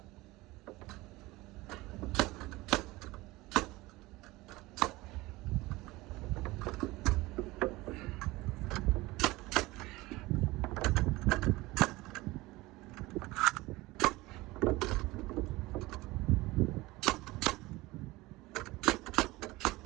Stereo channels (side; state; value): left; quieter; 20.4 dB